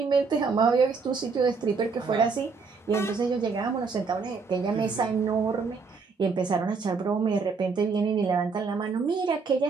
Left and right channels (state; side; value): quieter; left; 4.9 dB